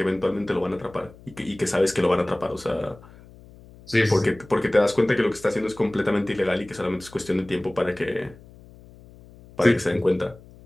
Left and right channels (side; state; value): left; noise; hum, 22 dB below the sound